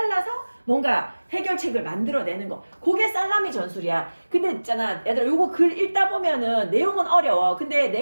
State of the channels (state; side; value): inverted; both; correlation -1.00